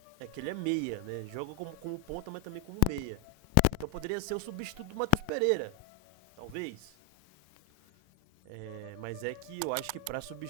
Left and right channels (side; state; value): both; different; correlation 0.01